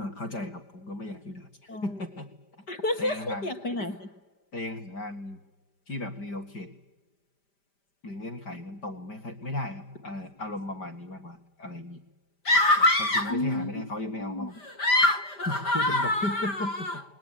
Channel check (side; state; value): right; late; 5.0 ms